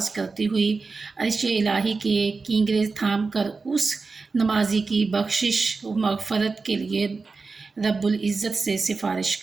کرتی ہوئی عرش الہی کے کینگرے تھام کر اس نمازی کی بخشش و مغفرت کے لیے رب العزت سے سفارش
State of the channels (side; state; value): left; quieter; 4.2 dB